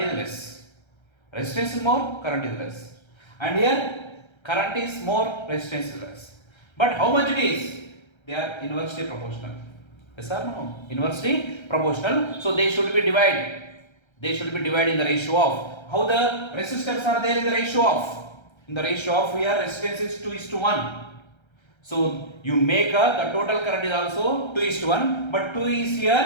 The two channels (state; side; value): late; right; 1.3 ms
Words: is less. Resistance is more, current is less. And here current is more, resistance is less. But how much it is? They are inversely proportional. Yes or no? Inversely proportional. So they should be divided. They should be divided in the ratio of. How the resistors are there in the ratio of? In the ratio of here resistance is 2:1. So you make the total current is also 2:1, but 2 is